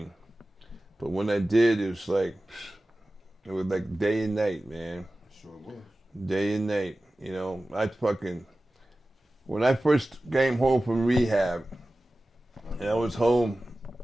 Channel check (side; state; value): both; normal; correlation 0.96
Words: But when I did, it was like day and night, man. Sure was. Day and night. You know, when I first came home from rehab, and I was home,